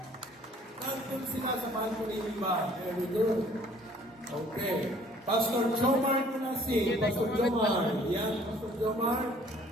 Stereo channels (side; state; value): both; normal; correlation 0.56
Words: Nandun sila sa balcony iba. Very good. Okay. Pastor Jomar Kunasi. Pastor Jomar. Yan, Pastor Jomar.